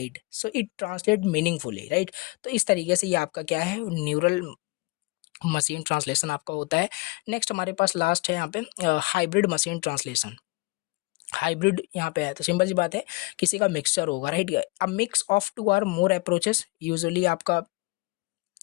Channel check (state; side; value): quieter; right; 25.2 dB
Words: so it translate meaningfully, right. तो इस तरीके से ये आपका क्या है, न्यूरल मशीन ट्रांसलेशन आपका होता है। नेक्स्ट हमारे पास लास्ट है यहाँ पे हाइब्रिड मशीन ट्रांसलेशन। हाइब्रिड यहाँ पे है तो सिंपल सी बात है, किसी का मिक्सचर होगा, right. A mix of two or more approaches, usually आपका